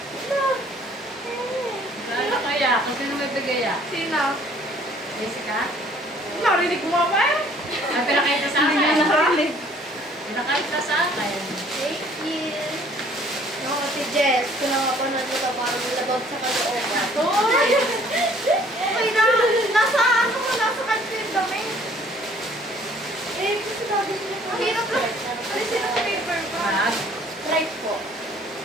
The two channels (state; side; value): normal; both; correlation 0.57